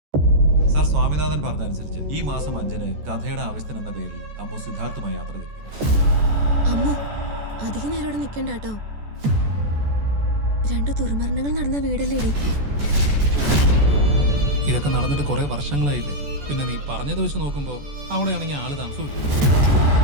സർ സ്വാമിനാഥൻ പറഞ്ഞതനുസരിച്ച് ഈ മാസം 5-ന് കഥയുടെ ആവശ്യത്തിന് എന്ന പേരിൽ അമ്മു സിദ്ധാർത്ഥുമായി യാത്ര തിരിക്കുന്നു. അമ്മു അധികം നേരം ഇവിടെ നിൽക്കണ്ട കേട്ടോ. 2 ദുർമരണങ്ങൾ നടന്ന വീടല്ലേടി. ഇതൊക്കെ നടന്നിട്ട് കുറെ വർഷങ്ങളായില്ലേ. പിന്നെ നീ പറഞ്ഞത് വെച്ച് നോക്കുമ്പോ അവിടെയാണെങ്കിൽ ആള് താമസമില്ല.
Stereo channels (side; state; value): left; late; 14 ms